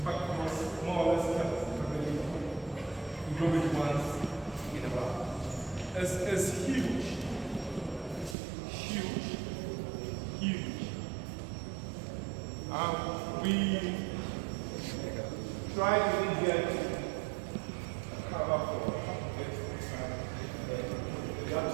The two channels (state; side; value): drops out; left; at 8.3 s